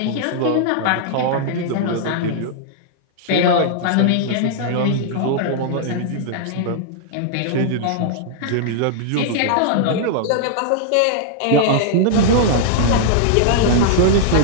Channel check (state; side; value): different; both; correlation -0.01